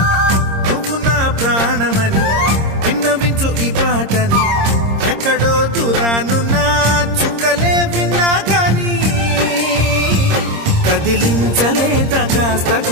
నువ్వు నా ప్రాణమని విన్నవించు ఈ పాటని ఎక్కడో దూరానున్నా చుక్కలే విన్నా గాని కదిలించలేదా కాస్త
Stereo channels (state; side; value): late; left; 26 ms